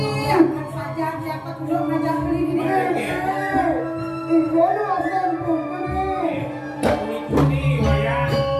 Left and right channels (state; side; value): identical; both; correlation 1.00